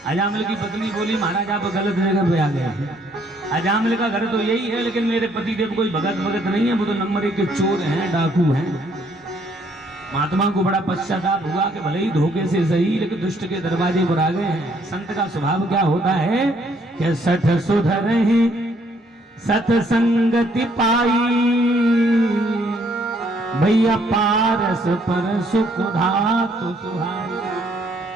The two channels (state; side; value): normal; both; correlation 0.66